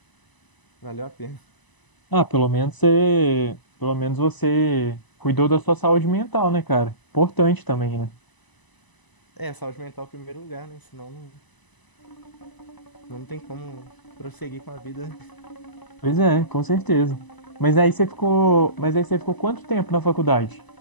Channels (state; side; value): late; right; 1.0 ms